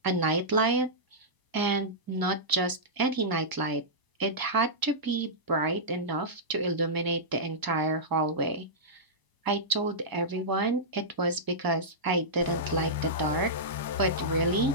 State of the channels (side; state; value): left; late; 1.0 ms